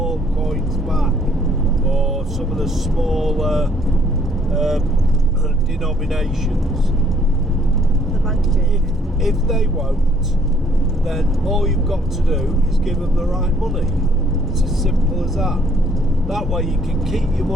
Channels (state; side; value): normal; both; correlation 0.63